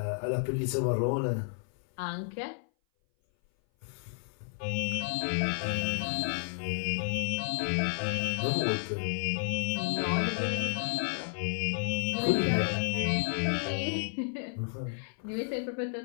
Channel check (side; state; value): right; silent; 57 dB below the other